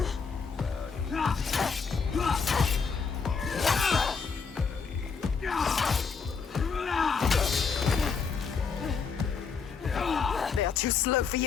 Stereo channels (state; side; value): quieter; right; 5.5 dB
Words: They are too slow for